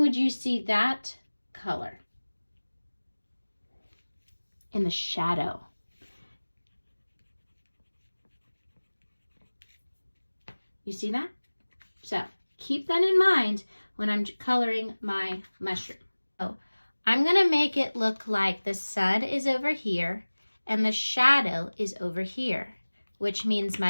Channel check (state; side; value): inverted; both; correlation -1.00